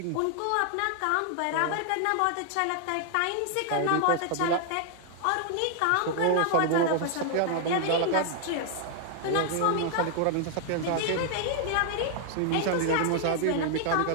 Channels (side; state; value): both; different; correlation 0.00